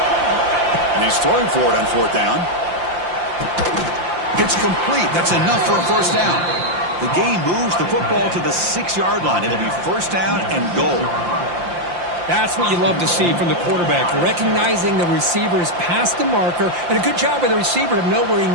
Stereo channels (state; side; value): late; left; 5.8 ms